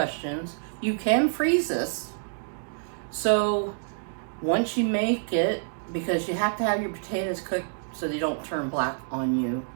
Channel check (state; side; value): silent; left; digital silence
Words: You can freeze this. So once you make it, because you have to have your potatoes cooked so they don't turn black on you